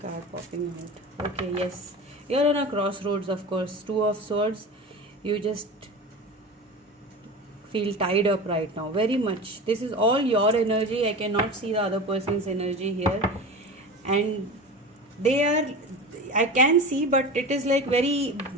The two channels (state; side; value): normal; both; correlation 0.30